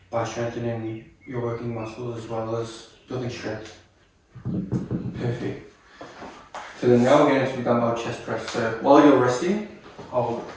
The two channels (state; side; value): identical; both; correlation 1.00